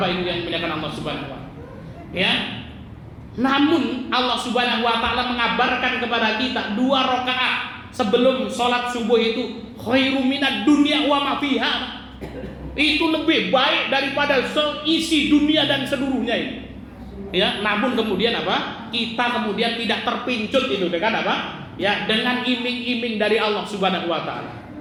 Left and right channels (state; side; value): identical; both; correlation 1.00